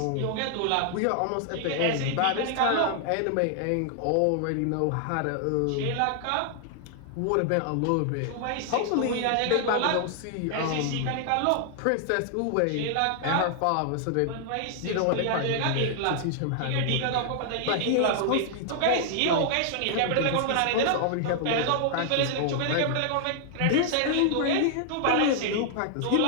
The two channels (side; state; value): both; different; correlation 0.00